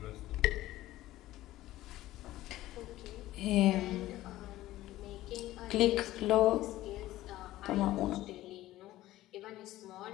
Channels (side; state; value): right; quieter; 15.7 dB